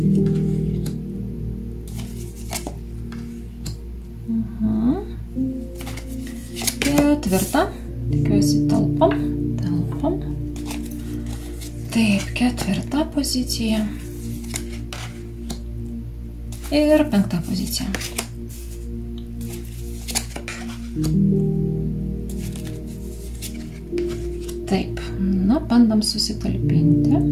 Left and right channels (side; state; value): both; identical; correlation 1.00